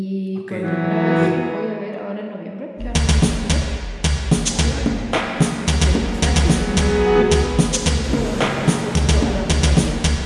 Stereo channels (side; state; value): both; identical; correlation 1.00